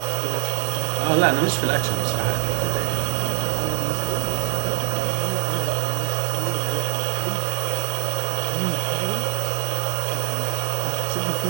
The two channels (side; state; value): left; silent; digital silence